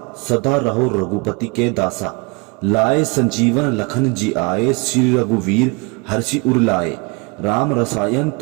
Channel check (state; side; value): quieter; left; 29.7 dB